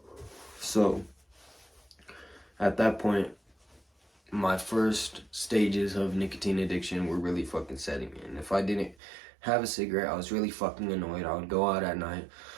So, at that point, my first stages of nicotine addiction were really fucking setting in. If I didn't have a cigarette, I was really fucking annoyed. I would go out at night,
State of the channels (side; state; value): left; drops out; at 9.0 s